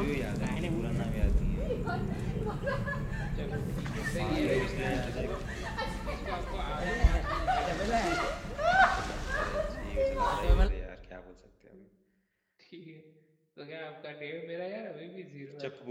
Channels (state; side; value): identical; both; correlation 1.00